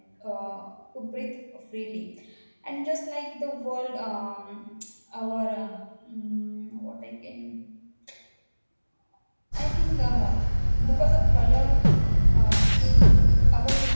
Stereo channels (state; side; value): inverted; both; correlation -1.00